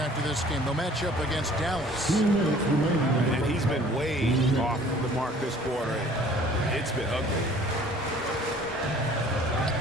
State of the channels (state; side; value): normal; both; correlation 0.52